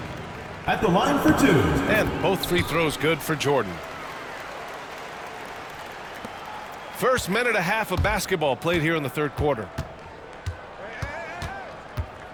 At the line for 2. And both free throws good for Jordan. First minute and a half of basketball played here in the third quarter.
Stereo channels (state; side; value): identical; both; correlation 1.00